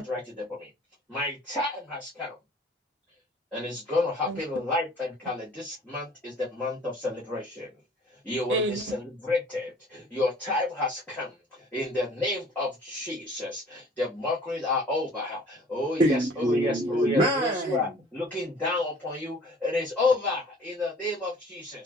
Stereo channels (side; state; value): both; normal; correlation 0.50